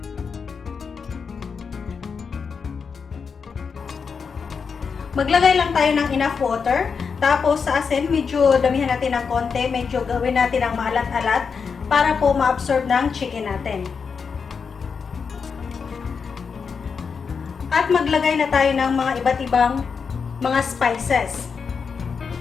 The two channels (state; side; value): quieter; right; 5.8 dB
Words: Maglagay lang tayo ng enough water. Tapos sa asin, medyo damihan natin ng konti. Medyo gawin natin ang maalat-alat para po ma-absorb ng chicken natin. At maglagay na tayo ng mga iba't ibang mga spices.